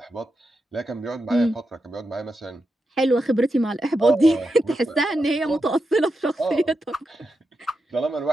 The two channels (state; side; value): normal; both; correlation 0.87